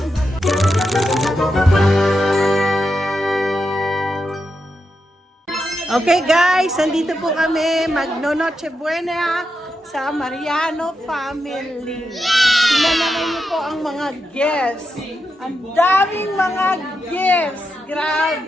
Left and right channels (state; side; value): normal; both; correlation 0.86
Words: Okay guys, nandito po kami magno-Noche Buena sa Mariano family. Tingnan naman niyo po ang mga guests. Ang daming mga guests.